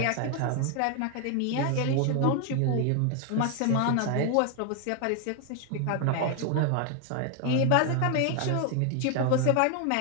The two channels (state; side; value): different; both; correlation 0.01